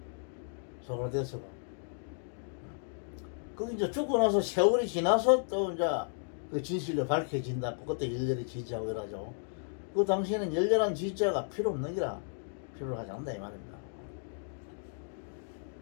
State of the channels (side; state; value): right; silent; digital silence